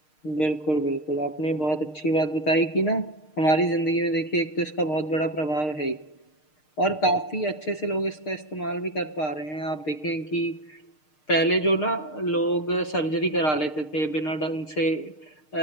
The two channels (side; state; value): right; late; 6.5 ms